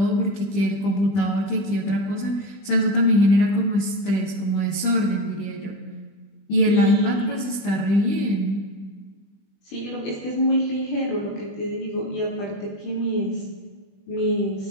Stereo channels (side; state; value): right; late; 20 ms